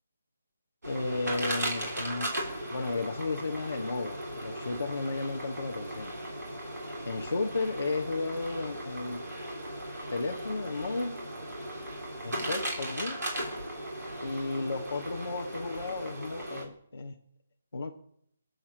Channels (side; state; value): both; inverted; correlation -0.80